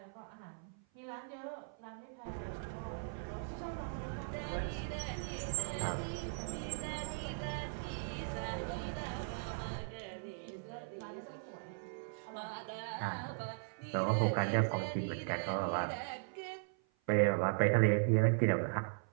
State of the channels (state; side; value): silent; left; 52 dB below the other